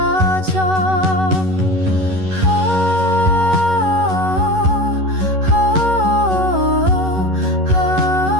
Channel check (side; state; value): left; late; 11 ms